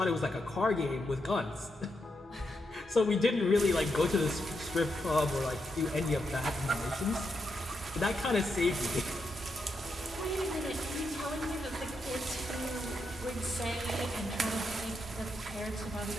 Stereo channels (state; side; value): normal; both; correlation 0.83